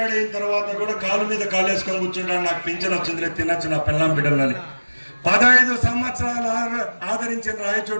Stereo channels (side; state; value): both; inverted; correlation -1.00